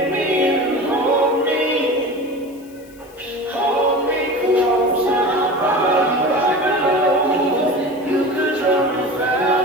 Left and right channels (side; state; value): left; noise; hiss, 26 dB below the sound